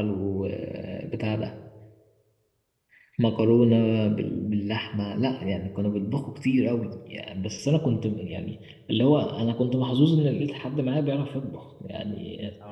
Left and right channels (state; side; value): identical; both; correlation 1.00